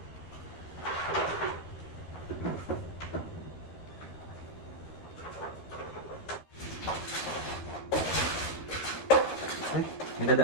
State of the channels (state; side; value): late; right; 13 ms